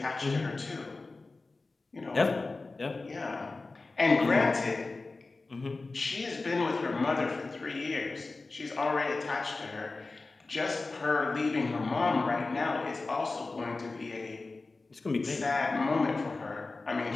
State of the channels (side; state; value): right; quieter; 3.6 dB